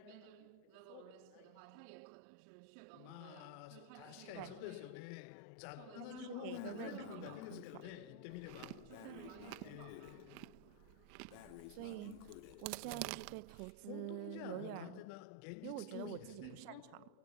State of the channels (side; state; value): both; different; correlation -0.01